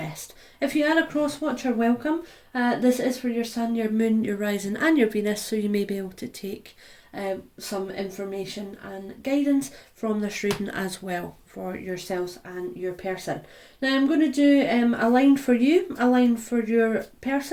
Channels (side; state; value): both; identical; correlation 1.00